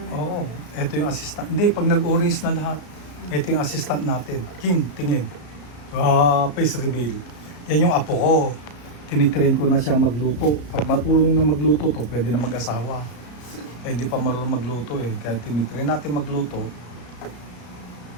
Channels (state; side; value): late; right; 34 ms